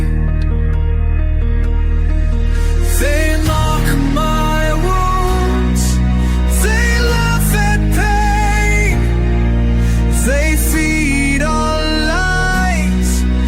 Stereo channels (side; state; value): both; identical; correlation 1.00